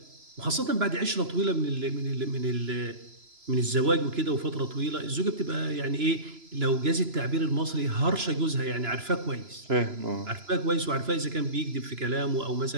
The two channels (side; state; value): left; late; 3.0 ms